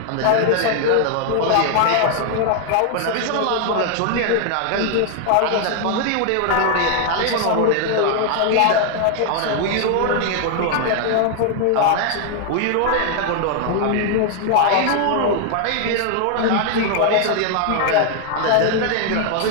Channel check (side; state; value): both; different; correlation 0.00